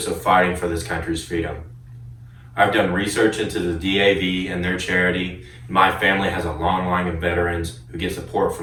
of fighting for this country's freedom. I've done research into the DAV and their charity. My family has a long line of veterans who get support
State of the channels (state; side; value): identical; both; correlation 1.00